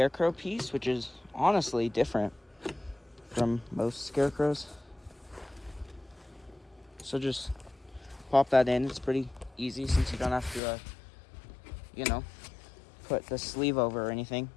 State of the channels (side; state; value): right; drops out; at 10.6 s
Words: piece, which is honestly different from most scarecrows. So just pop that in. It's pretty easy since you don't have to, put the sleeve over or anything.